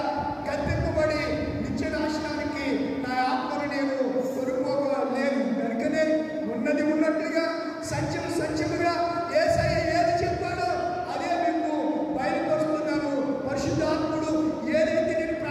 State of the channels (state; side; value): identical; both; correlation 1.00